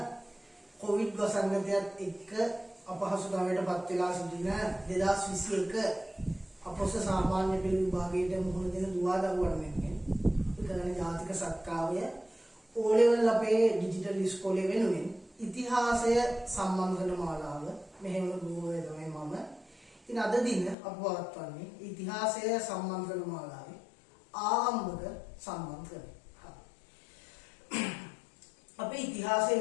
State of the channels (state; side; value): drops out; right; at 20.8 s